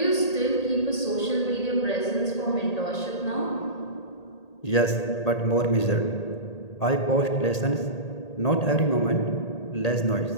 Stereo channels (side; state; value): right; late; 1.8 ms